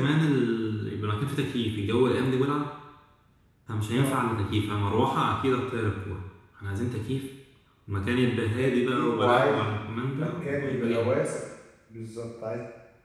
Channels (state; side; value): identical; both; correlation 1.00